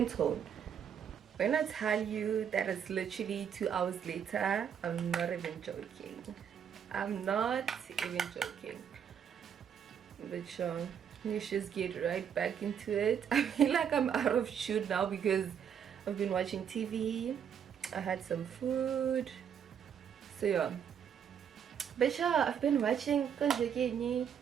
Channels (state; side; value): quieter; left; 8.1 dB